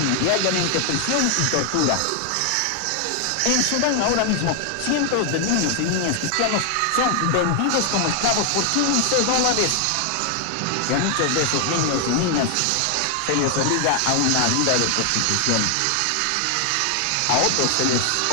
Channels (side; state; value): both; different; correlation 0.00